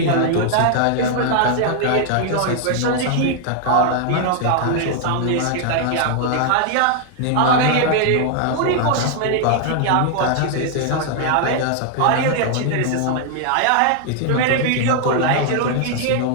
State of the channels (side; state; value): both; different; correlation 0.00